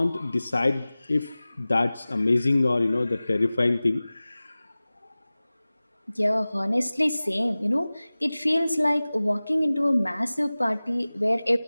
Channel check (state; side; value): inverted; both; correlation -0.98